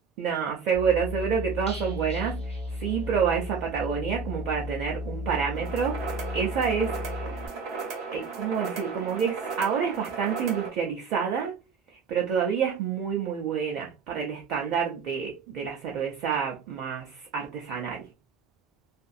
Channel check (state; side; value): quieter; left; 5.6 dB